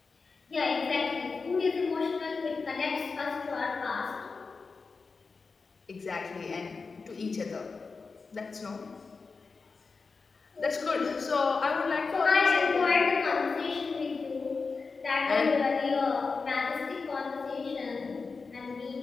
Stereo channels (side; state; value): right; quieter; 4.5 dB